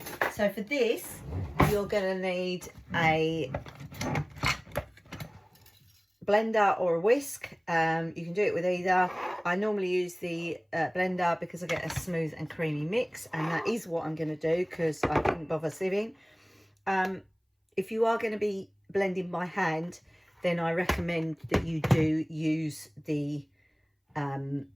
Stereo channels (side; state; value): both; identical; correlation 1.00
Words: So for this, you're going to need a blender or a whisk. You can do it with either. I normally use the blender because I get a smooth and creamy mix, and that is what I'm going to do because I didn't bother sieving. If you are going to be blending by hand, then I recommend that you do use the